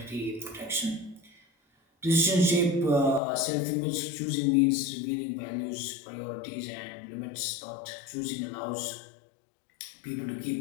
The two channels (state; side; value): drops out; right; at 3.2 s